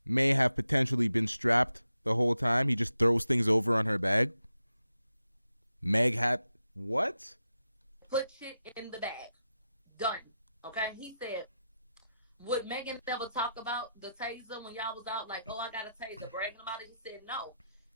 may have potentially been strapped the whole time. He just throws things over on her bag. Meg had what? Put shit in the bag. Done. Okay? He said, would Megan never talk about the taser when y'all was out? Like, oh, I got a taser, bragging about it? He said, no.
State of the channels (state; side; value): inverted; both; correlation -0.88